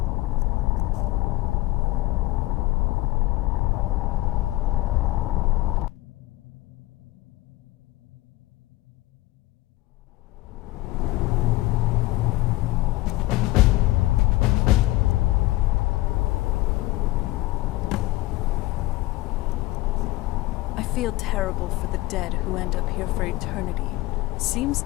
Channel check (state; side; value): quieter; right; 18.5 dB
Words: I feel terrible for the dead who end up here for eternity. Seems